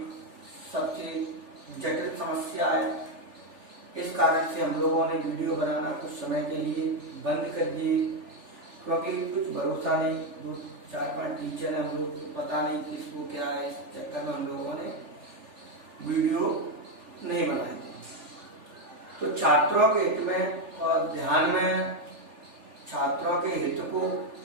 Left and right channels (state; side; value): late; left; 3.4 ms